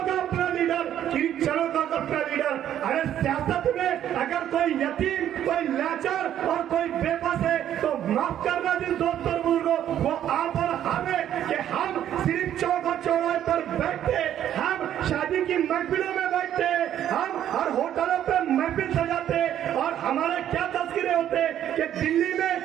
का अपना लीडर, क्रिश्चियनों का अपना लीडर। अरे सियासत में अगर कोई यतीम, कोई लाचार और कोई बेबस है तो माफ करना जिस दोस्त और बुजुर्गों, वो आप और हमें कि हम सिर्फ चौक और चौराहे पर बैठते, हम शादी की महफिलों में बैठते, हम हर होटलों पर महफिल सजाते और हमारे क्या तस्करे होते कि दिल्ली में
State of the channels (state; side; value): quieter; left; 10.8 dB